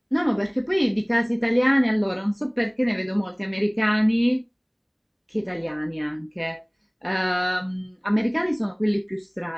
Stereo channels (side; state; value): both; identical; correlation 1.00